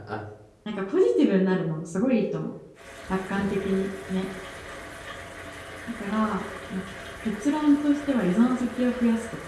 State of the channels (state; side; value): identical; both; correlation 1.00